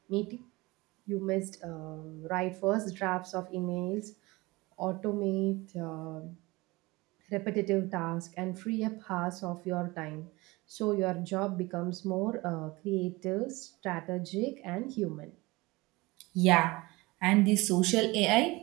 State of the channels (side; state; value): left; quieter; 22.3 dB